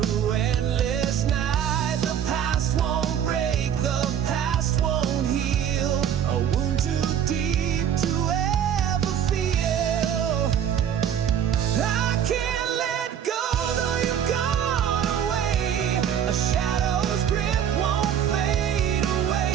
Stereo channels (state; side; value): quieter; left; 9.1 dB